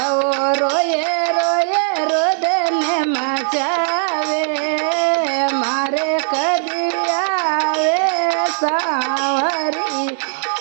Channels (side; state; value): left; silent; digital silence